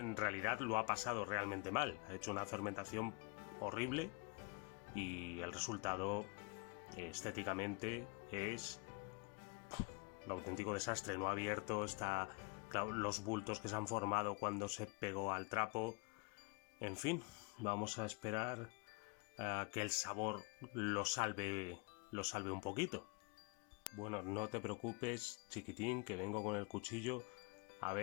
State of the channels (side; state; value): right; quieter; 31.5 dB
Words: realidad lo ha pasado realmente mal. Ha hecho una fermentación horrible y el resultado estéticamente es un auténtico desastre. No ha abierto, está... Claro, los bultos que se han formado cuando se pegó al trapo. En fin, vamos a esperar a que el sabor lo salve un poquito. Bueno, no te preocupes, chiquitín, que vengo con el cuchillo a